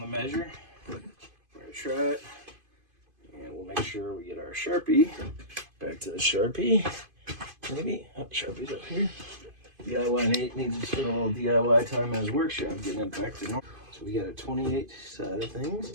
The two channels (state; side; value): late; left; 2.5 ms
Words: measure. We're going to try it, and we'll make sure we get our Sharpie. Back to the Sharpie, maybe. Oh, Sharpie's up here. DIYNate needs to spend a little DIY time in his workshop getting it back to normal. So we got a 28 side of